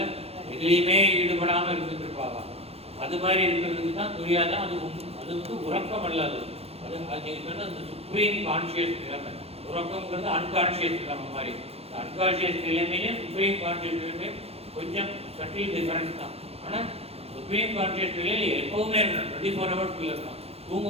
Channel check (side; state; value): left; late; 0.29 ms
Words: எதுலேயுமே ஈடுபடாமல் இருந்துட்டு இருப்பாங்க. அது மாதிரி இருக்கிறதுக்கு தான் துரியாதான். அது வந்து உறக்கம் அல்லது அது நீங்கள் சொன்ன அந்த சுப்ரீம் கான்சியஸ் நிலைமை. உறக்கம்ங்கிறது அன்கான்சியஸ் நிலைமை மாதிரி. அன்கான்சியஸ் நிலைமையும் சுப்ரீம் கான்சியஸ் நிலைமையும் கொஞ்சம் சட்டில் டிஃபரன்ஸ் தான். ஆனால் சுப்ரீம் கான்சியஸ் நிலையில் எப்பவுமே இருக்கணும், 24 hours இருக்கணும்.